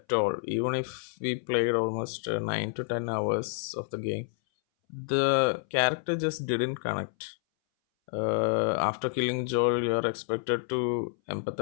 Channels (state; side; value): silent; right; 59 dB below the other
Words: all. Even if we played almost 9 to 10 hours of the game, the character just didn't connect. After killing Joel, you are expected to